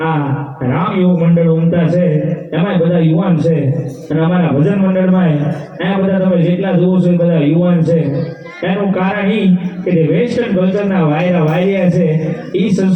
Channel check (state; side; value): identical; both; correlation 1.00